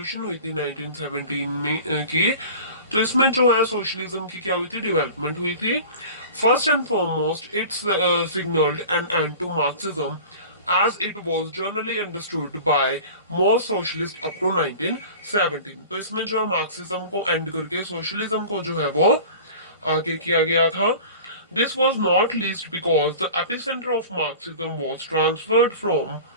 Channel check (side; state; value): both; inverted; correlation -0.39